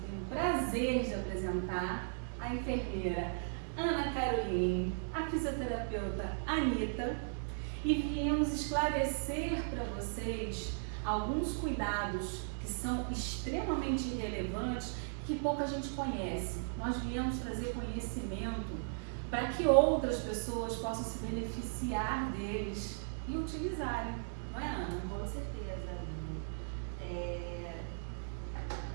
tenho o prazer de apresentar, a enfermeira Ana Caroline, a fisioterapeuta Anitta, e viemos esclarecer para vocês alguns cuidados que são extremamente relevantes que pouca gente conhece. Nós viemos trazer conhecimento para que outras pessoas possam se beneficiar deles e utilizarem, não é, Ana? Com certeza.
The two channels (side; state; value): left; silent; digital silence